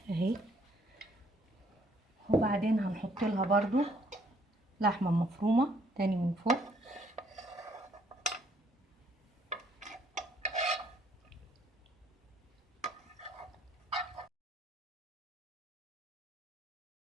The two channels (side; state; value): both; normal; correlation 0.65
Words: اهي. وبعدين هنحط لها برضو لحمة مفرومة تاني من فوق.